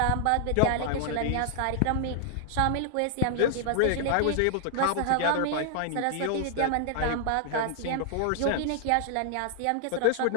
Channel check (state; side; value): different; both; correlation -0.01